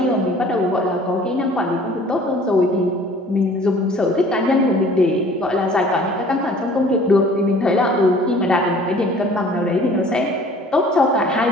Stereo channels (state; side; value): normal; both; correlation 0.51